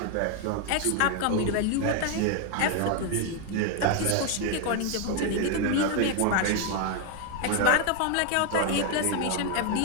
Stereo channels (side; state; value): both; different; correlation 0.01